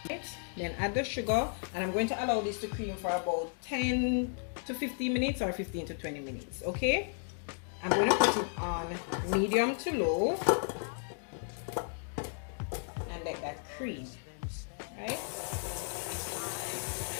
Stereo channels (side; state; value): right; silent; 55 dB below the other